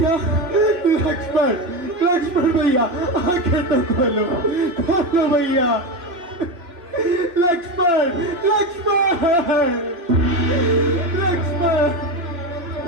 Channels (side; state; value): left; late; 2.8 ms